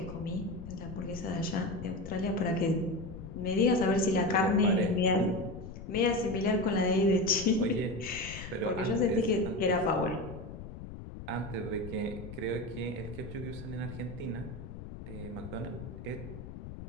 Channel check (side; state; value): left; noise; rumble, 11 dB below the sound